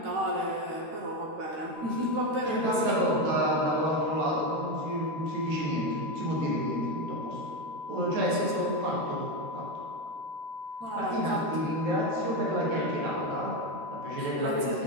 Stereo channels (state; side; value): late; left; 13 ms